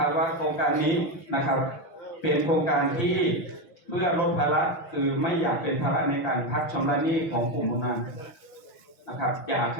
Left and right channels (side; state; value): right; late; 6.2 ms